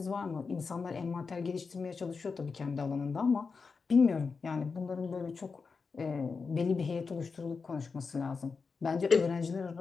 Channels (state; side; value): quieter; right; 4.9 dB